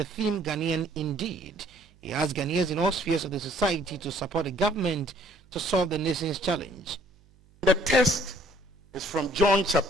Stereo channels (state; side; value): noise; right; hum, 30 dB below the sound